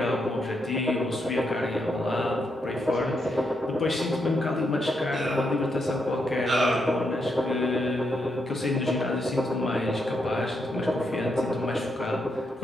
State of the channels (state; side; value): normal; both; correlation 0.80